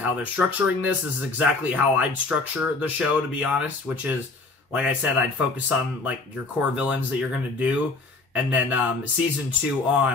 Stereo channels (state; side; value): quieter; right; 3.6 dB